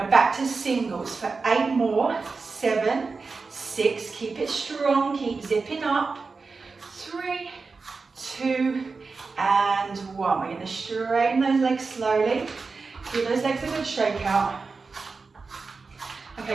back to singles for 8 more, 7, 6, keep it strong, keep zipping up, 3, 2 and 1. We're going to straighten those legs slowly. Give those legs a good shake out.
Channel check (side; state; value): left; quieter; 4.4 dB